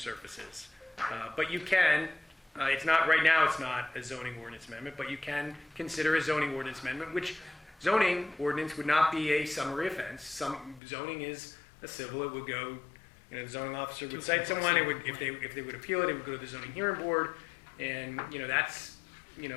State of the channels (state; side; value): drops out; right; at 10.8 s